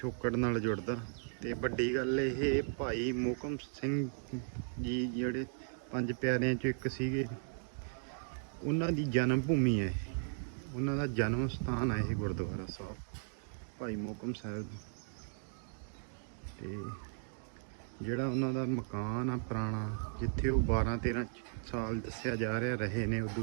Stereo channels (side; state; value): left; silent; digital silence